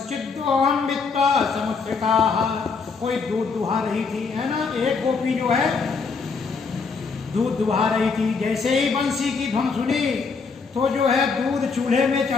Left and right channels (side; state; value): right; quieter; 4.9 dB